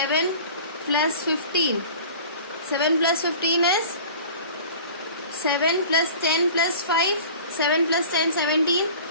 plus 15. 7 plus 15 is 7 plus 10 plus 5. 7 plus 10, 17.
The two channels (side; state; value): both; inverted; correlation -0.42